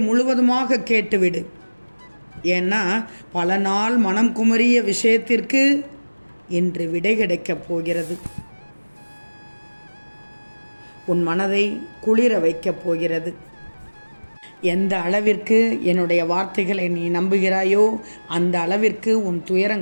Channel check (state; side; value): inverted; both; correlation -1.00